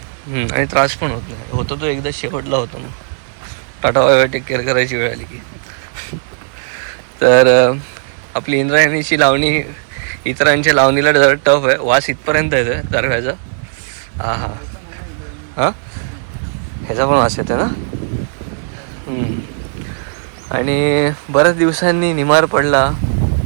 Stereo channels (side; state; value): left; silent; 68 dB below the other